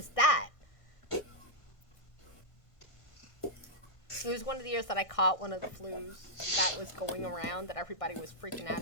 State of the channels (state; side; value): late; right; 1.6 ms